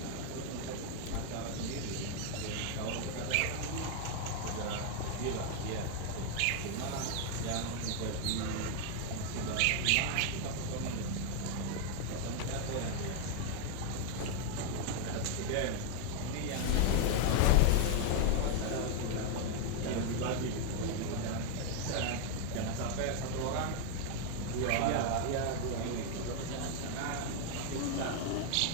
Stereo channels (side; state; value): both; different; correlation 0.00